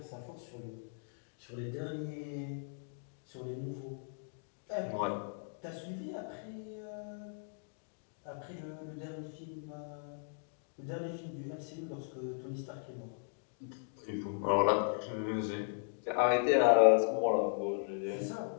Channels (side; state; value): right; silent; digital silence